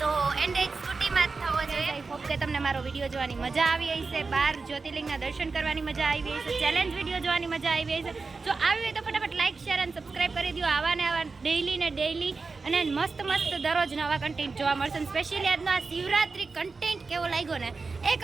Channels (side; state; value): left; quieter; 4.2 dB